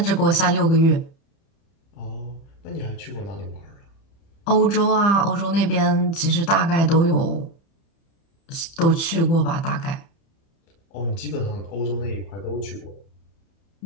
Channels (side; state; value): right; late; 30 ms